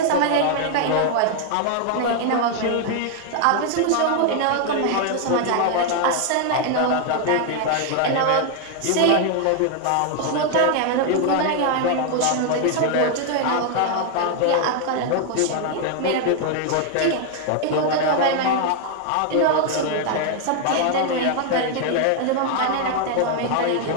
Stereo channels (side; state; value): both; different; correlation 0.00